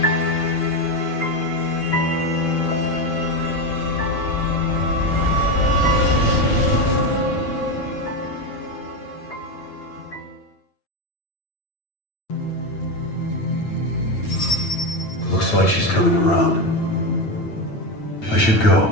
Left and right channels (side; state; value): right; late; 9.0 ms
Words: Looks like she's coming around. I should go.